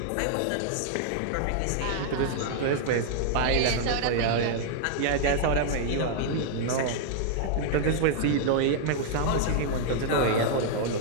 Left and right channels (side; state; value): both; different; correlation -0.01